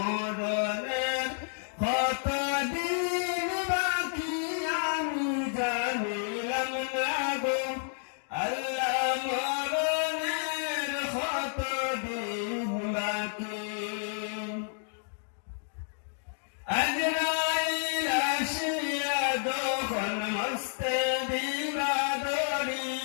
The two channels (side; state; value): right; silent; digital silence